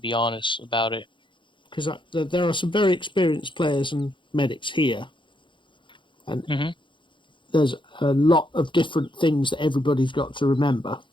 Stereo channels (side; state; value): right; late; 0.23 ms